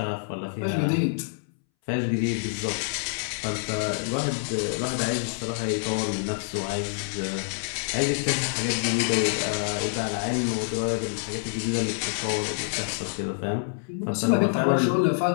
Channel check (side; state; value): right; silent; 60 dB below the other